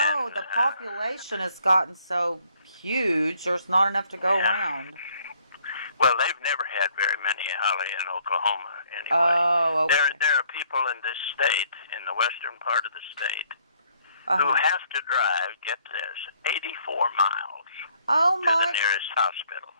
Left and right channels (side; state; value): both; inverted; correlation -0.65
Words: And, the population has gotten so huge. There's not enough to go Yeah. around. Well, they've never had very many, Holly, in Oklahoma anyway. Oh, okay. There are people in this state, in the western part of the state, who Uh-huh. have to drive, get this, 84 miles Oh to the my, nearest hospital. I